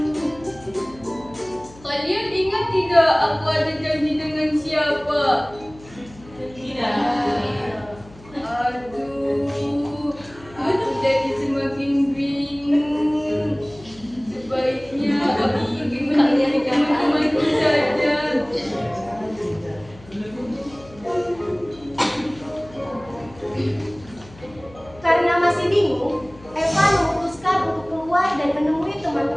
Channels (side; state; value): left; noise; hum, 21 dB below the sound